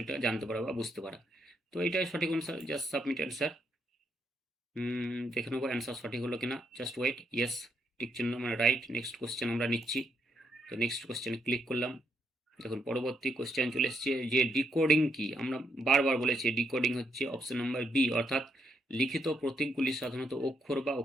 জানতে পারা বা বুঝতে পারা। তো এটাই সঠিক অ্যান্সার, জাস্ট সাবমিট অ্যান্সার। দেখে নেবো অ্যান্সার সঠিক হলো কিনা, জাস্ট ওয়েট। ইয়েস, টিক চিহ্ন মানে রাইট। নেক্সট কোশ্চেন আমরা নিচ্ছি। তো নেক্সট কোশ্চেনে ক্লিক করলাম। দেখুন পরবর্তী কোশ্চেন চলে এসছে যে ডিকোডিং কি। আমরা বারবার বলেছি ডিকোডিং হচ্ছে অপশন নাম্বার বি, অর্থাৎ লিখিত প্রতীকগুলি সাধারণত অক্ষর বা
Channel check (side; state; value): both; normal; correlation 0.77